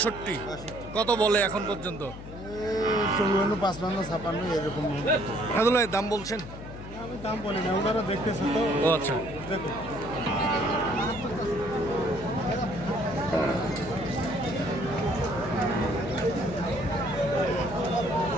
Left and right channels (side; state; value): left; noise; hum, 13 dB below the sound